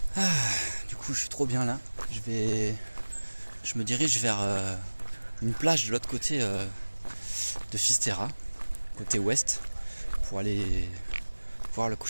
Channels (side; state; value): both; inverted; correlation -1.00